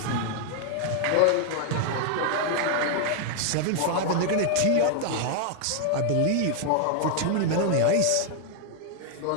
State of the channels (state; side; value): different; both; correlation 0.00